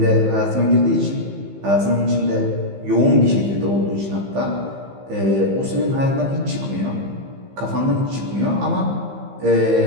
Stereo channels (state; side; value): late; left; 15 ms